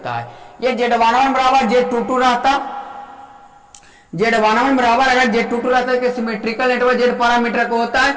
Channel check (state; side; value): identical; both; correlation 1.00